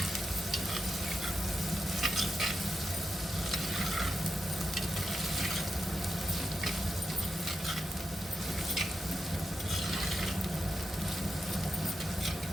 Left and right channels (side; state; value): both; normal; correlation 0.87